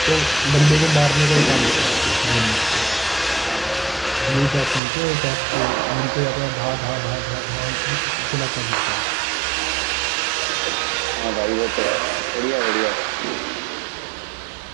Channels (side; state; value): left; drops out; at 4.8 s